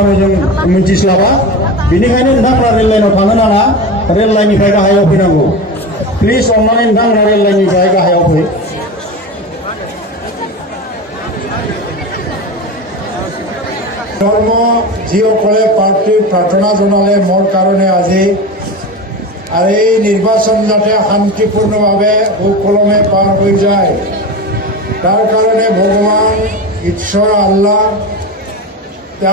जों मिन्थिस्लाबा बेनिखायनो नोंथांमोना रेल लाइनाव थांनो नाङा रेल लाइननिफ्राय गाहायाव फैनांगौ प्लिज अननानै नोंथांमोना रेल लाइननिफ्राय गाहायाव फै ধৰ্ম যিসকলে পাৰ্টি প্ৰাৰ্থনা জনালে মোৰ কাৰণে আজি আৰু এই নিৰ্বাচন যাতে শান্তিপূৰ্ণভাৱে সুকলমে পাৰ হৈ যায় তাৰ কাৰণে ভগৱান ঈশ্বৰ আল্লাহ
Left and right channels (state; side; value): normal; both; correlation 0.26